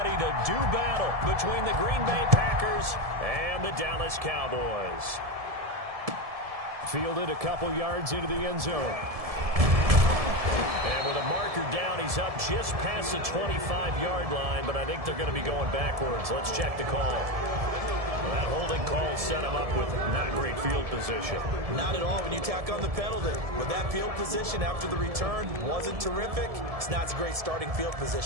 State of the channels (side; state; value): left; late; 1.7 ms